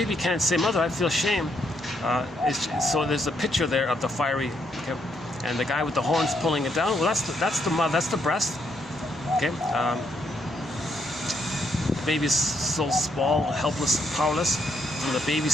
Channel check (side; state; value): both; normal; correlation 0.75